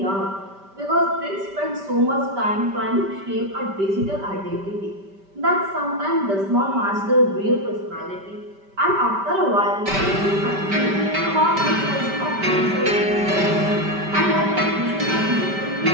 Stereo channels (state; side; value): late; left; 5.1 ms